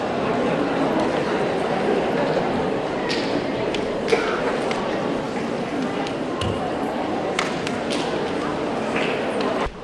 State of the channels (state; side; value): identical; both; correlation 1.00